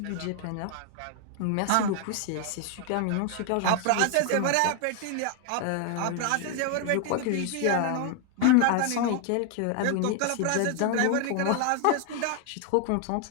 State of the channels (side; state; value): both; different; correlation 0.00